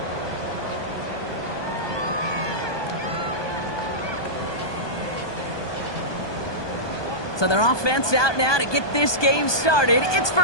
So their offense out now to get this game started. It's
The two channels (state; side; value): late; right; 1.2 ms